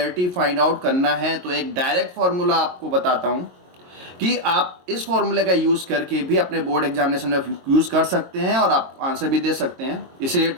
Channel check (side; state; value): left; late; 22 ms